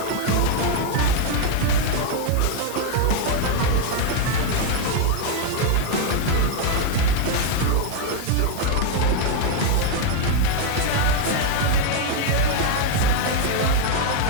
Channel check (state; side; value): different; both; correlation 0.01